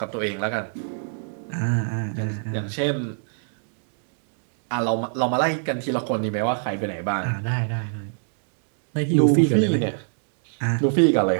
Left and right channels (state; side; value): silent; left; digital silence